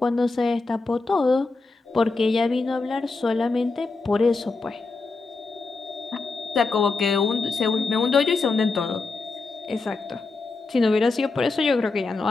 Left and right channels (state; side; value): quieter; right; 3.8 dB